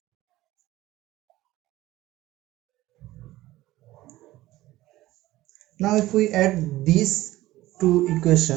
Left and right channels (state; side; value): quieter; left; 16.7 dB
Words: Now if we add these two